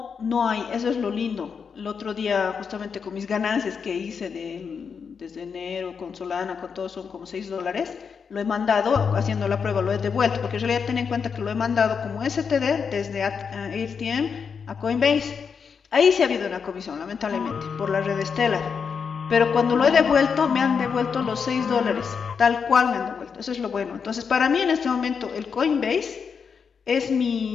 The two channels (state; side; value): quieter; right; 6.2 dB